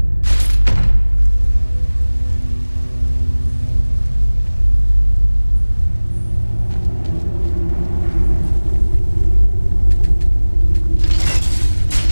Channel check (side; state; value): both; inverted; correlation -1.00